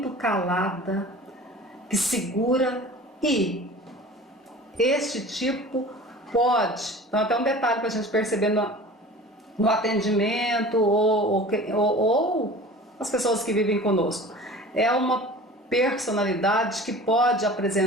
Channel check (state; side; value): normal; both; correlation 0.40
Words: calada, que segura, e este tipo pode, então até um detalhe para a gente perceber no atendimento ou as pessoas que vivem conosco, é uma personalidade que pode